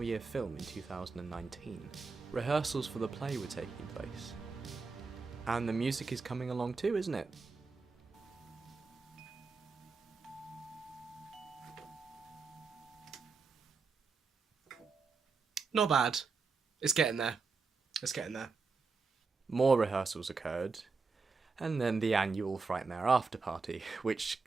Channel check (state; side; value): quieter; left; 4.5 dB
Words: film in 2019. Rehearsals for the play were taking place. And the music is coming along too, isn't it? Not bad. It's getting there. More rehearsals occurred, and then the annual Frightmare after party, which